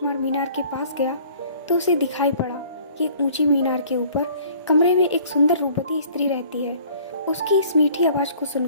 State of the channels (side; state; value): both; inverted; correlation -0.53